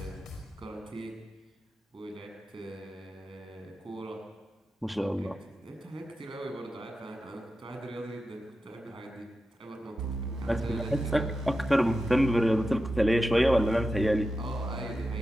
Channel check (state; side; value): normal; both; correlation 0.90